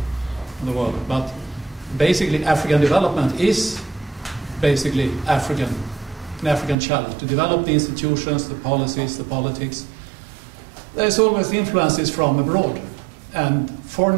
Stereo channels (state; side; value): drops out; left; at 6.8 s